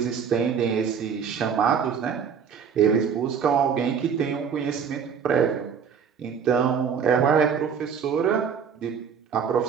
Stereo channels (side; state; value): left; quieter; 6.9 dB